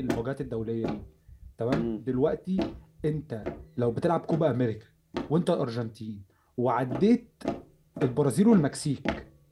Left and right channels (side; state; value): both; identical; correlation 1.00